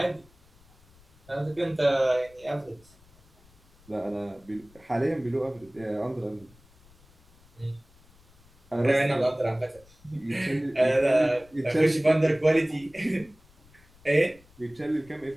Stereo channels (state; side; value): noise; left; rumble, 28 dB below the sound